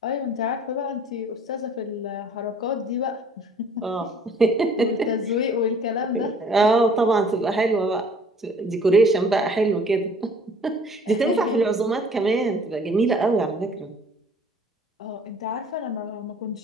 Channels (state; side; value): normal; both; correlation 0.54